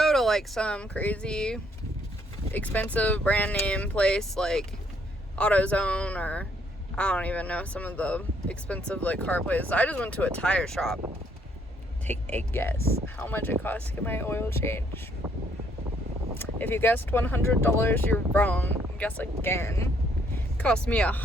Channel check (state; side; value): normal; both; correlation 0.68